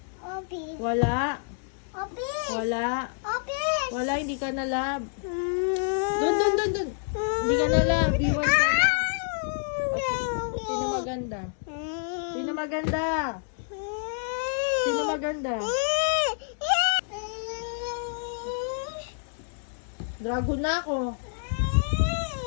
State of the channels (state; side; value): silent; right; digital silence